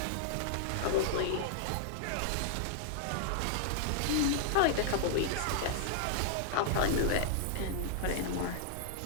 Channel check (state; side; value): different; both; correlation -0.01